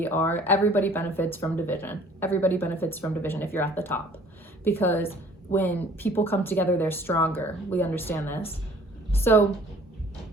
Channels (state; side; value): normal; both; correlation 0.53